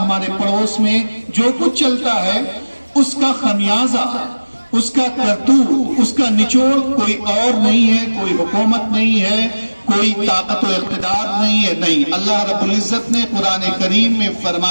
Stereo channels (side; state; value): both; inverted; correlation -1.00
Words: پڑوس میں جو کچھ چلتا ہے, اس کا خمیازہ, اس کا کرتوت, اس کا نچوڑ کوئی اور نہیں ہے, کوئی حکومت نہیں ہے, کوئی طاقت و اقتدار نہیں ہے. نہیں, اللہ رب العزت نے قرآن کریم میں